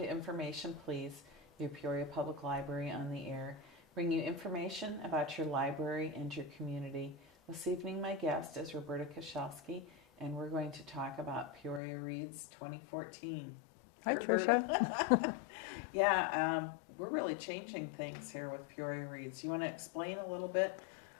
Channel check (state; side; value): drops out; right; at 11.8 s